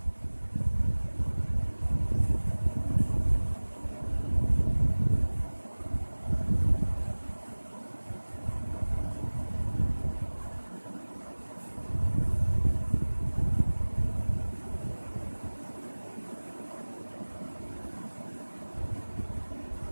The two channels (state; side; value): inverted; both; correlation -1.00